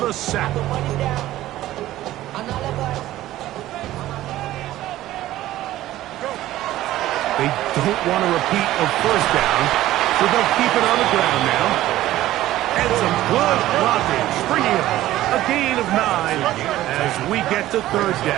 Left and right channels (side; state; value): left; quieter; 14.9 dB